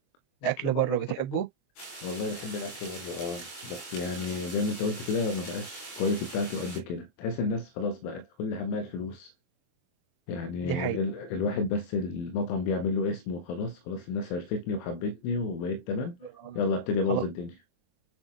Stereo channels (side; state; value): right; late; 23 ms